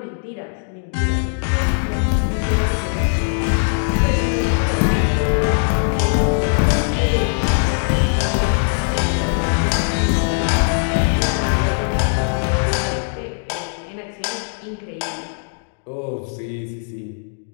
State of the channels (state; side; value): silent; right; digital silence